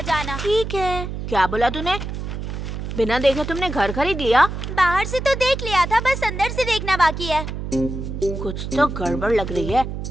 जाना। ठीक है। क्या बोला तूने? बिना देखे तुमने घर खरीद लिया? बाहर से तो देख लिया था, बस अंदर से देखना बाकी है। कुछ तो गड़बड़ लग रही है।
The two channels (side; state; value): right; noise; hum, 6 dB below the sound